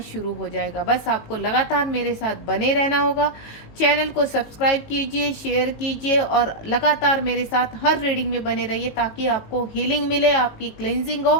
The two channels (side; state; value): right; late; 18 ms